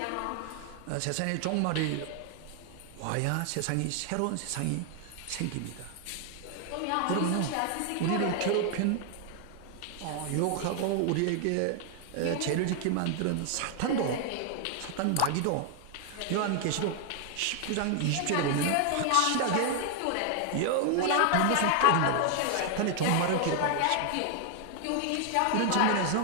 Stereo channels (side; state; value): both; different; correlation 0.00